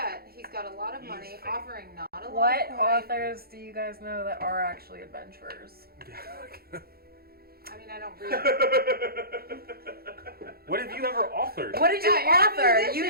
he's got a lot of He's money, fake. offering not a lot What of coin. authors do you guys know that are actually adventurers? I mean, I don't read. What have you ever authored? What did you Yeah, you're a author? You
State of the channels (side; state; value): left; late; 0.44 ms